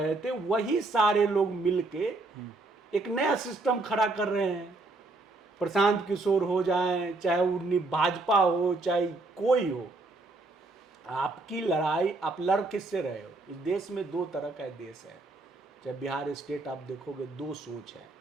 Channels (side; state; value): left; quieter; 3.2 dB